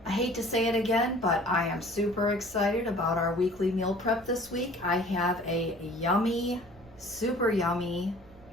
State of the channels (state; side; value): noise; right; rumble, 24 dB below the sound